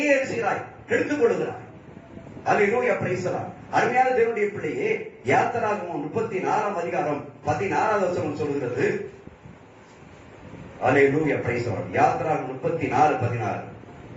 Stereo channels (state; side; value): identical; both; correlation 1.00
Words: எழுதுகிறாய், எடுத்துக் கொள்கிறாய். அல்லேலூயா, பிரைஸ் தி லார்ட். அருமையான தேவனுடைய பிள்ளையே, யாத்திராகமம் 34:16 சொல்லுகிறது. அல்லேலூயா, பிரைஸ் தி லார்ட். யாத்திராகமம் 34:16.